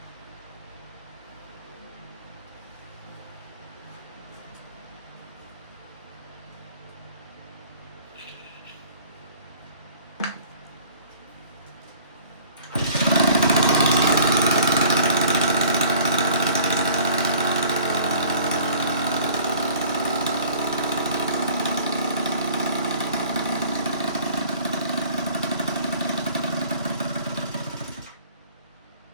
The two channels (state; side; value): inverted; both; correlation -0.51